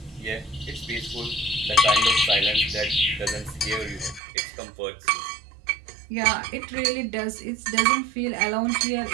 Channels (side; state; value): left; drops out; at 4.2 s